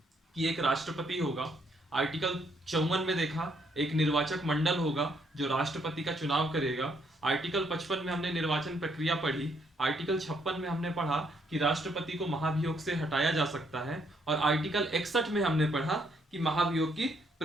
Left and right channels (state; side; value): normal; both; correlation 0.71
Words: कि एक राष्ट्रपति होगा। आर्टिकल 54 में देखा एक निर्वाचक मंडल होगा जो राष्ट्रपति का चुनाव करेगा। आर्टिकल 55 में हमने निर्वाचन प्रक्रिया पढ़ी। आर्टिकल 56 में हमने पढ़ा कि राष्ट्रपति को महाभियोग से हटाया जा सकता है। और आर्टिकल 61 में हमने पढ़ा कि महाभियोग की